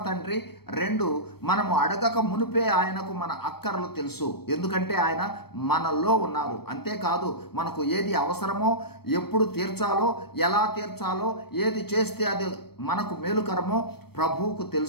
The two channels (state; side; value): late; right; 0.96 ms